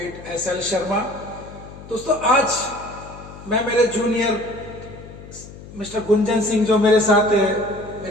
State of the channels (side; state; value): left; noise; hum, 16 dB below the sound